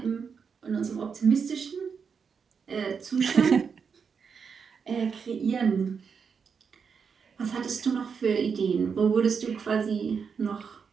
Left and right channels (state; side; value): quieter; left; 6.1 dB